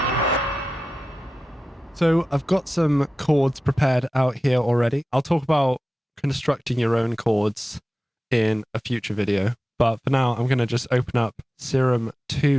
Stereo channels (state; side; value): normal; both; correlation 0.94